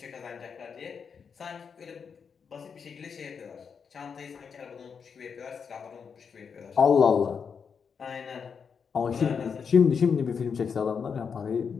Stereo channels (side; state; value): right; quieter; 6.3 dB